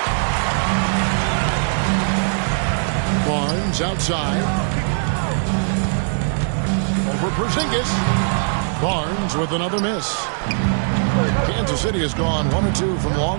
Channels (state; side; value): silent; left; 64 dB below the other